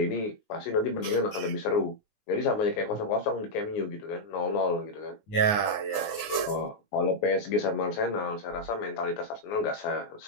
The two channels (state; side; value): late; right; 19 ms